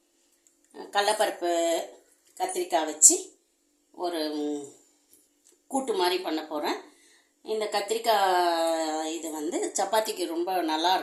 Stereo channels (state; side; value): identical; both; correlation 1.00